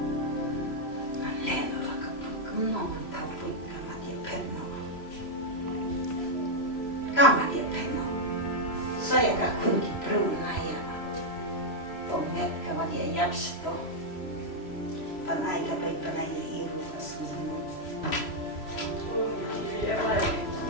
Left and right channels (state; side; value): late; right; 3.0 ms